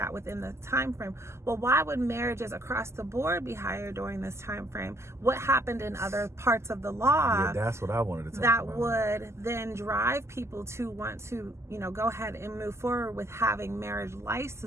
within the time frame. Well, why would marriages across the board be higher during this time frame? What happened in other parts of the law? Yeah, that's what I wanted to talk that about. Would then drive people to want to, go ahead and move forward with having marriage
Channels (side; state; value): left; late; 0.13 ms